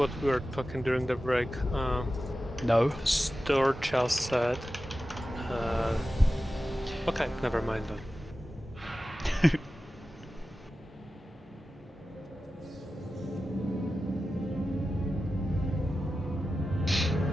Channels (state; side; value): normal; both; correlation 0.94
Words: we were talking during the break. No. Storch just said. Okay, never mind then.